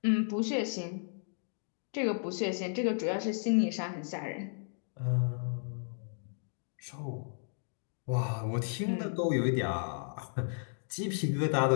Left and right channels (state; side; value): silent; right; digital silence